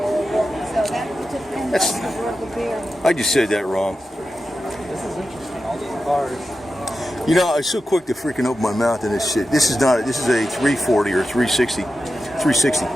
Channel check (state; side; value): normal; both; correlation 0.91